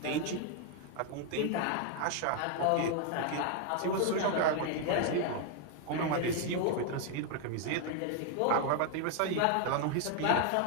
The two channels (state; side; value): different; both; correlation 0.00